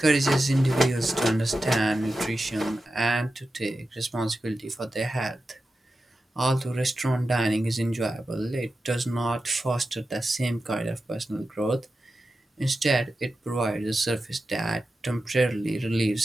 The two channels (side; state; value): both; normal; correlation 0.92